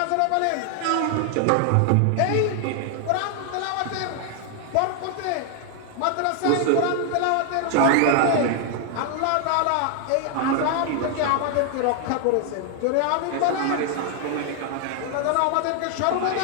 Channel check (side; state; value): both; different; correlation 0.00